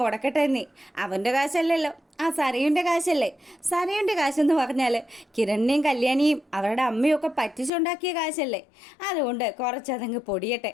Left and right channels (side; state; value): right; drops out; at 7.7 s